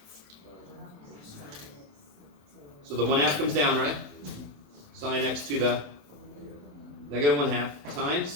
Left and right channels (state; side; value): late; left; 27 ms